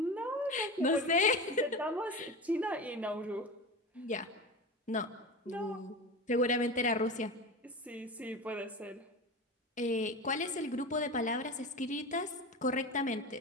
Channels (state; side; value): normal; both; correlation 0.27